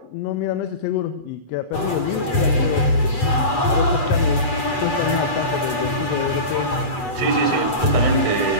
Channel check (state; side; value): late; right; 8.0 ms